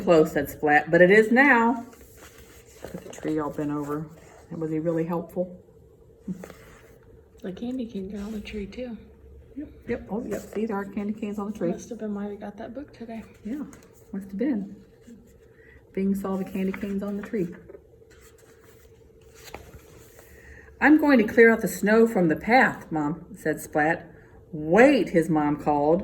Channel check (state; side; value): identical; both; correlation 1.00